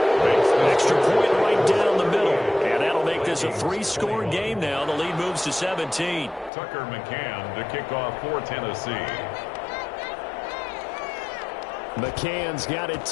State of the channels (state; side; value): drops out; right; at 6.5 s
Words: Extra point right down the middle. And that'll make this a 3-score game now. The lead moves to 17. Tucker McCann to kick off for Tennessee. McCann's got it